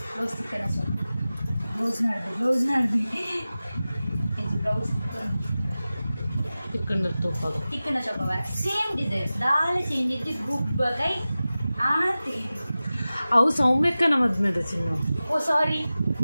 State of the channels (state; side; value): inverted; both; correlation -0.96